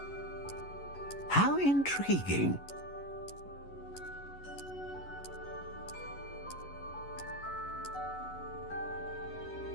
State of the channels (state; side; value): late; right; 11 ms